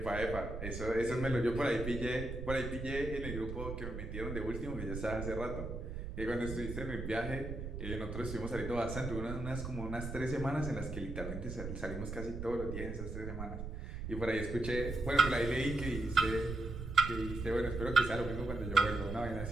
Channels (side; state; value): right; noise; rumble, 6 dB below the sound